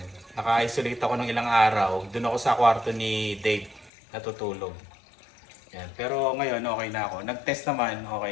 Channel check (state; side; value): drops out; right; at 3.9 s